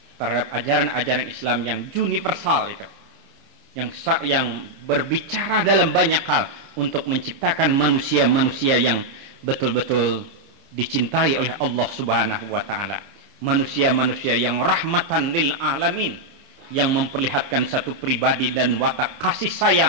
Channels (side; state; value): left; late; 29 ms